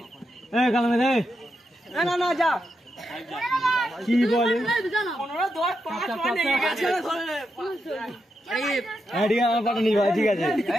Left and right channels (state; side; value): normal; both; correlation 0.85